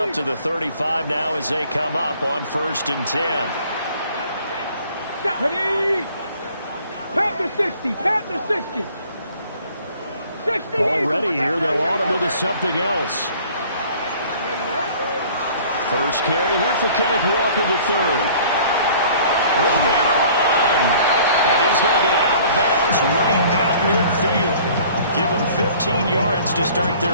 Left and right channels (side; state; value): both; inverted; correlation -0.52